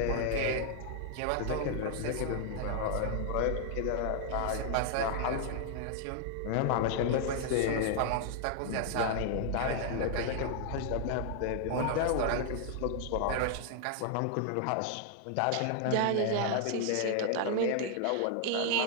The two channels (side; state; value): both; different; correlation 0.00